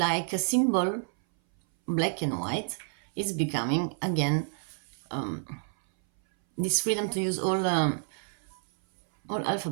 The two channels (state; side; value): silent; left; 58 dB below the other